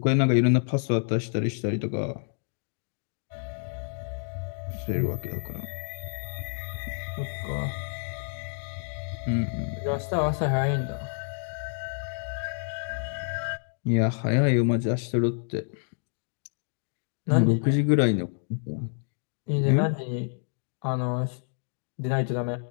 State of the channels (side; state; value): right; silent; digital silence